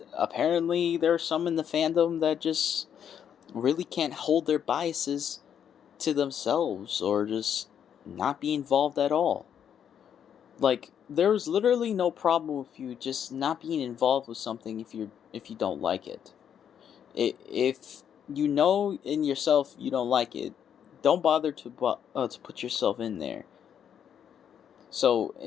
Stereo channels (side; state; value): right; quieter; 8.7 dB